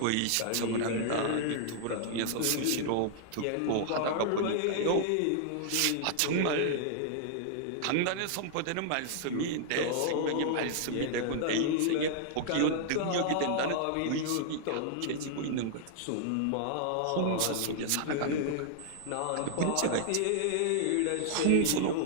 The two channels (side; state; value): both; different; correlation -0.01